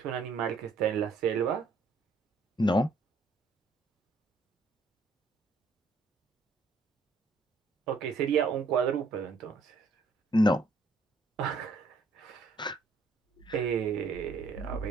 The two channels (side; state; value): left; quieter; 3.4 dB